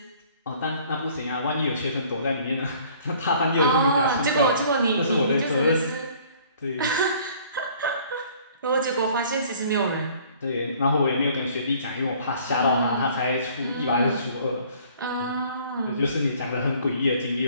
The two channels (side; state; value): both; inverted; correlation -0.55